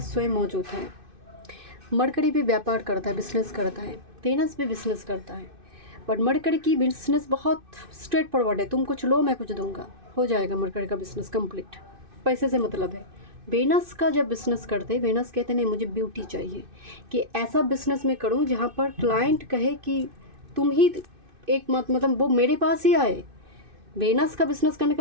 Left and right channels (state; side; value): late; left; 2.6 ms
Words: स्वयं मौजूद है। मरकरी भी व्यापार करता है, बिजनेस करता है, वेनस भी बिजनेस करता है, बट मरकरी की बिजनेस बहुत स्ट्रेट फॉरवर्ड है, तुम कुछ लो मैं कुछ दूंगा, हो जाएगा मरकरी का बिजनेस कंप्लीट, पैसे से मतलब है। वेनस का जब बिजनेस करते हैं, वेनस कहते नहीं मुझे ब्यूटी चाहिए, कि ऐसा बिजनेस मैं करूँ जहाँ पर क्लाइंट कहे कि तुम ही एक मतलब वो मेरे पास ही आए। वेनस का बिजनेस करने